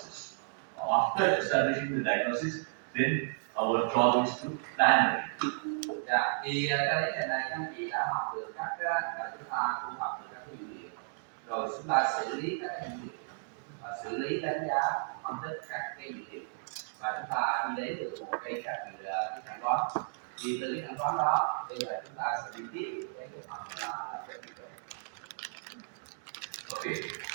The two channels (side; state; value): left; silent; digital silence